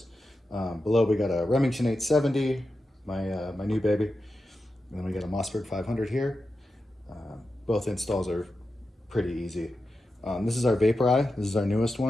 Below we got a Remington 870, my new baby, and then we got a Mossberg 500 here. Both installs are pretty easy. This is our Vapor Eye. This is our newest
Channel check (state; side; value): normal; both; correlation 0.91